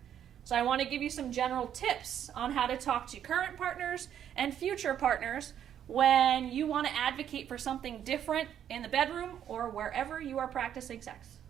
So I want to give you some general tips on how to talk to current partners and future partners when you want to advocate for something different in the bedroom or wherever you are practicing sex.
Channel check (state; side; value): quieter; left; 9.8 dB